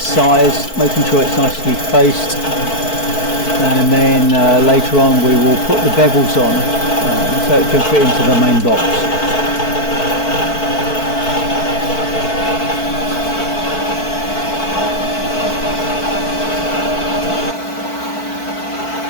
making sure it's nicely faced, and then later on we will put the bevels on so it can fit into the main box.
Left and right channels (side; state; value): right; late; 4.5 ms